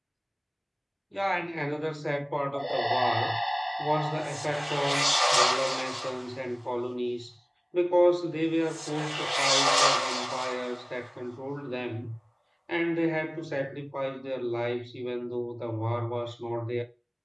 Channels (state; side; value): identical; both; correlation 1.00